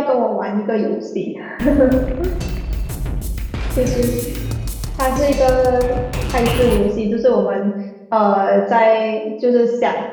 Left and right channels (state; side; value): identical; both; correlation 1.00